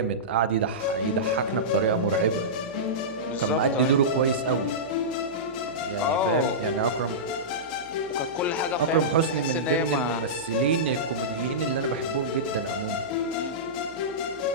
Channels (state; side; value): noise; left; hum, 25 dB below the sound